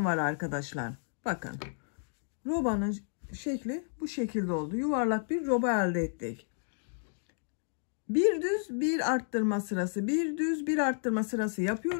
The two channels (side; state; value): right; silent; digital silence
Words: var arkadaşlar. Bakın. Robanın şekli bu şekilde oldu. Yuvarlak bir roba elde ettik. Bir düz bir arttırma sırası, bir düz bir arttırma sırası